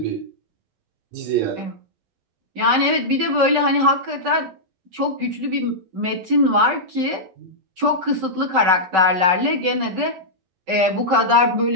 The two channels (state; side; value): late; left; 11 ms